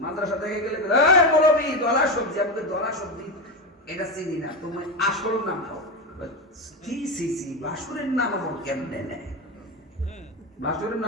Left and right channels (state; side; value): normal; both; correlation 0.16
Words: মাদ্রাসা থেকে গেলে এই মৌলবি দলা সবজি, আমাকে দলা সবজি এটা চিনি না, তোমার আসল নাম কও। কি সিসি বাসুরের নাম আমার কেমনে নেয়? বাসুরের